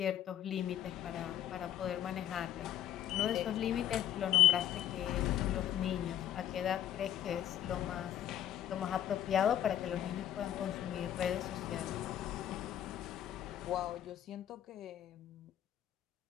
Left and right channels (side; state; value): right; quieter; 11.3 dB